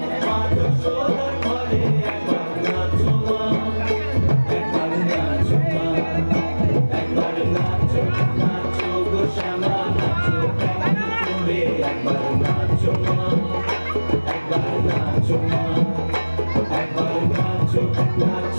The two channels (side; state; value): both; inverted; correlation -1.00